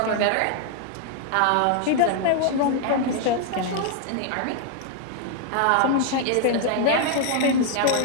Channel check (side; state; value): both; different; correlation 0.00